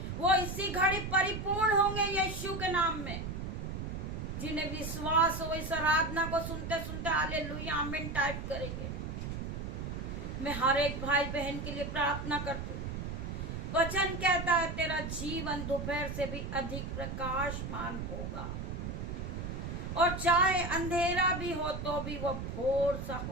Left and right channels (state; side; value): noise; right; rumble, 5 dB below the sound